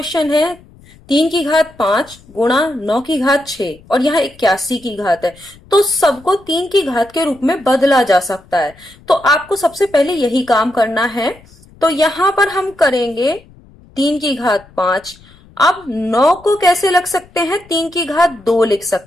है 3 की घात 5 गुणा 9 की घात 6 और यहाँ 81 की घात है। तो सबको 3 की घात के रूप में बदला जा सकता है। तो आपको सबसे पहले यही काम करना है। तो यहाँ पर हम करेंगे 3 की घात 5। अब 9 को कैसे लिख सकते हैं? 3 की घात 2 लिख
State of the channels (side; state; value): left; noise; rumble, 26 dB below the sound